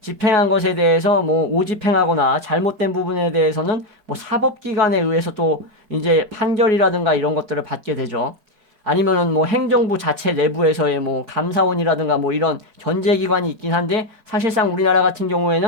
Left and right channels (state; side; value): late; left; 4.6 ms